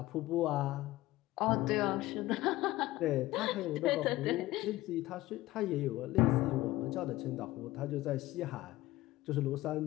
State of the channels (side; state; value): right; quieter; 17.3 dB